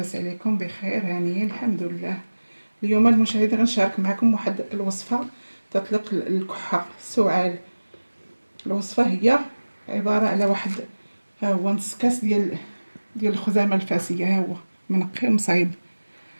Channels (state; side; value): inverted; both; correlation -1.00